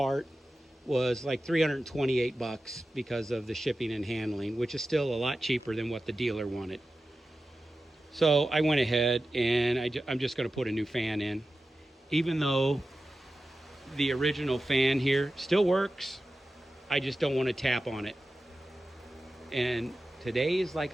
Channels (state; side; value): normal; both; correlation 0.94